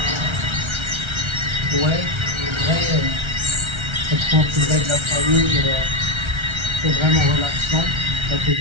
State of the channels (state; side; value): late; left; 1.3 ms